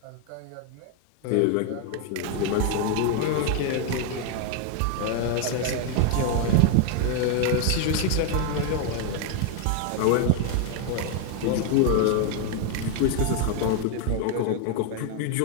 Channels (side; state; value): both; different; correlation 0.01